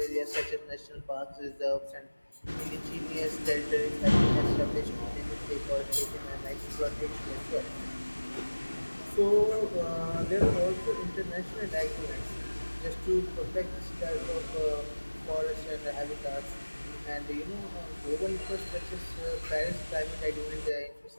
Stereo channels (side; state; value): both; inverted; correlation -1.00